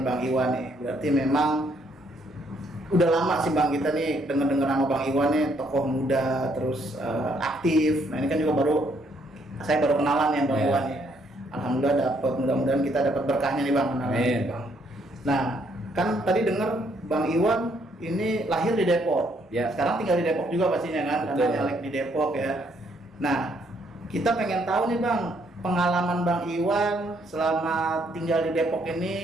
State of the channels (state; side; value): normal; both; correlation 0.70